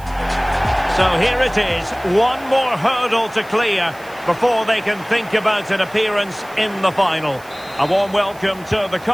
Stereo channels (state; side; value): noise; right; hiss, 24 dB below the sound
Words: So here it is. One more hurdle to clear before they can think about an appearance in the final. A warm welcome to the